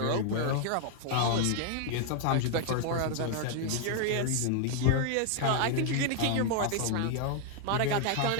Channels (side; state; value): both; different; correlation 0.00